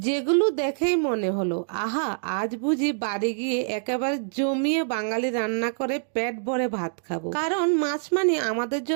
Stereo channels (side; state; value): left; silent; digital silence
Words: যেগুলো দেখেই মনে হলো আহা, আজ বুঝি বাড়ি গিয়ে একেবারে জমিয়ে বাঙালি রান্না করে পেট ভরে ভাত খাবো। কারণ মাছ মানে আমাদের